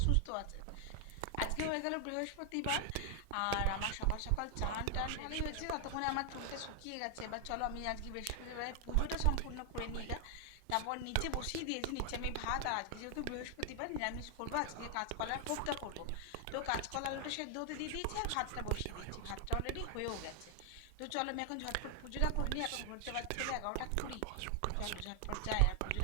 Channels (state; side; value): different; both; correlation 0.00